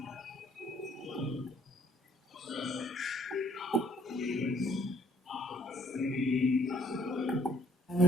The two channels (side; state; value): both; normal; correlation 0.64